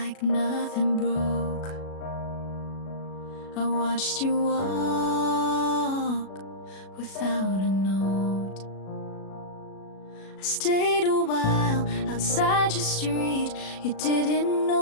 nothing broke. I watched you walk without a note. I stayed a while outside your street. You didn't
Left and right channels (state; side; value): late; right; 37 ms